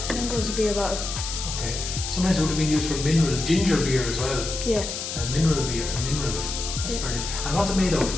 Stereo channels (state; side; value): noise; left; hiss, 5 dB below the sound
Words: I think it was a beer bottle. Okay. Sometimes it would have been used for ginger beer as well. Yeah. Mineral beer, minerals. That's brilliant. And what's it made of?